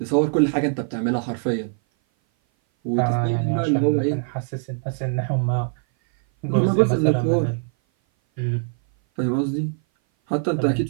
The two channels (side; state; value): left; silent; 58 dB below the other